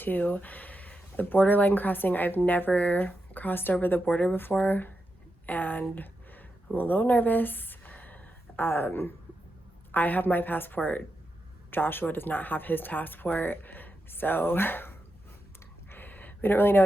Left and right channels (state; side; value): normal; both; correlation 0.87